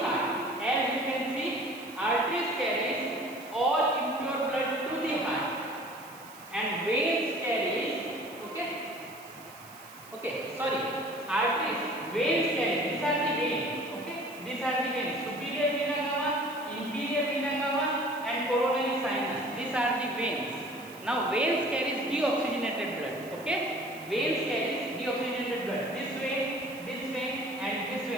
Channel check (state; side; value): noise; right; hiss, 20 dB below the sound